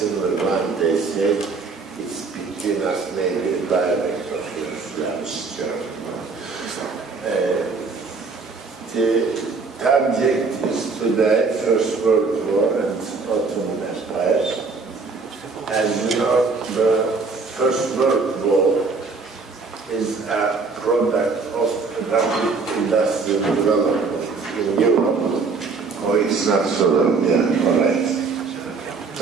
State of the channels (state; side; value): quieter; left; 4.4 dB